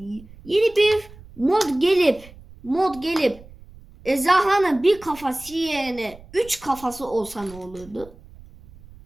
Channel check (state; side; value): noise; right; rumble, 21 dB below the sound